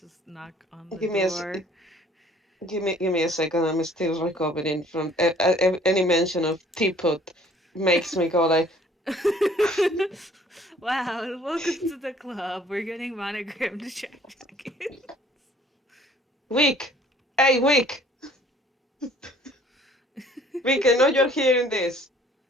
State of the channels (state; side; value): normal; both; correlation 0.56